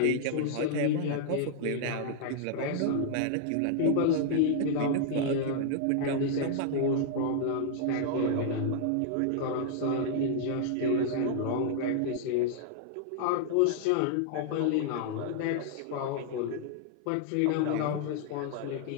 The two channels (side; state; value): both; different; correlation -0.01